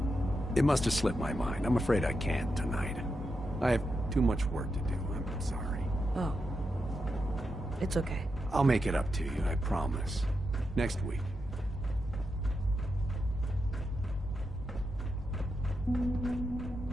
it must have slipped my mind. I'm afraid I can't tonight. I have too much work to do. I'm sorry. Oh. It's okay. I'll make it up to you, I promise. Next week.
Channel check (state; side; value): normal; both; correlation 0.86